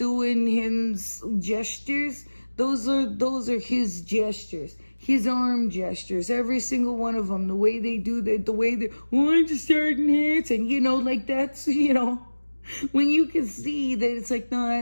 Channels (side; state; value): both; inverted; correlation -1.00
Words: his gestures, those are his gestures. His arm gestures, every single one of them, the way they do the way they, I'm just starting hits, and you know, like, that's, you know, when you can see that it's like, no,